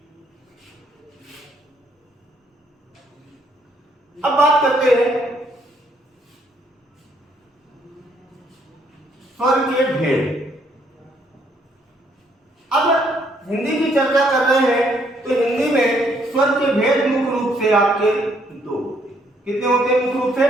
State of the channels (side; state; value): both; normal; correlation 0.69